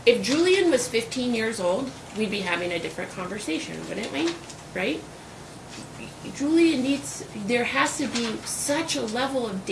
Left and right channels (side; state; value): both; identical; correlation 1.00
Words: If Julian was 15 years old, we'd be having a different conversation, wouldn't we? Right? Julian needs, there has to be such a level of